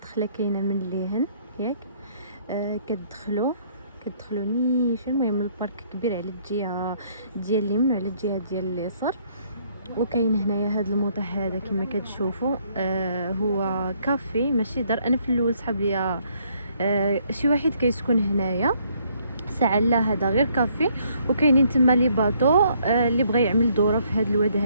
كاينه من اللهن ياك. كتدخلوا نيشان. المهم البارك كبير على الجهه ديال اليمين وعلى الجهه ديال اليسار. وكاين هنايا هذا الموضع هذا كما كتشوفوا. هو كافي ماشي دار. انا في الاول صحاب ليا شي واحد كيسكن هنايا ساعه لا هذا غير كافي. وكاينين تما لي باطو اللي بغى يعمل دوره في هذا الواد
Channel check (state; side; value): inverted; both; correlation -0.67